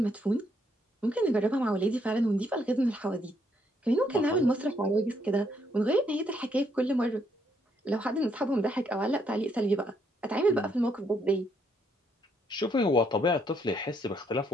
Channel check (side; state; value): both; normal; correlation 0.72